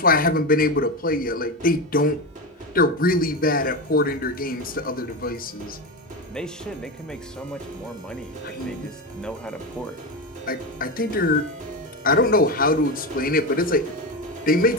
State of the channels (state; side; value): normal; both; correlation 0.17